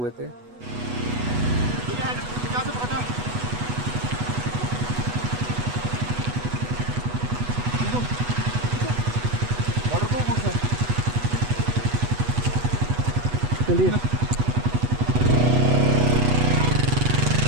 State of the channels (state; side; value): late; left; 8.2 ms